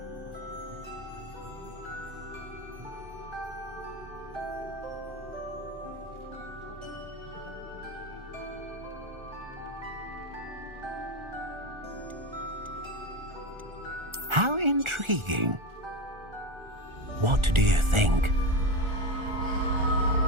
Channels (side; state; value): left; late; 1.4 ms